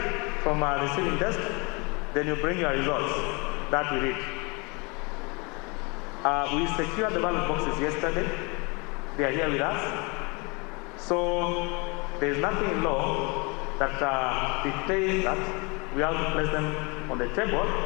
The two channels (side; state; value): right; quieter; 29.4 dB